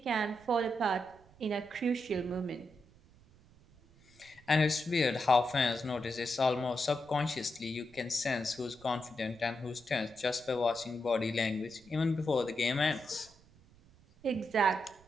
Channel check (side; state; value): right; noise; rumble, 27 dB below the sound